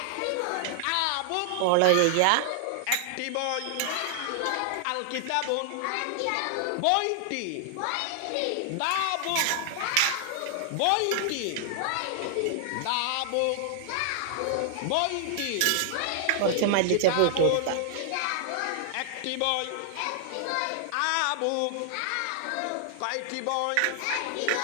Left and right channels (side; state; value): both; different; correlation 0.00